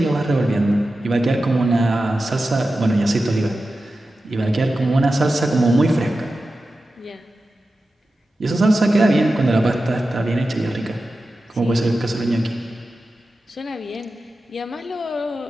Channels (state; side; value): normal; both; correlation 0.93